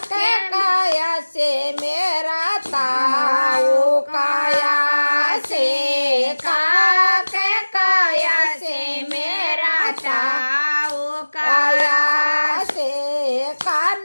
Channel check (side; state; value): both; inverted; correlation -1.00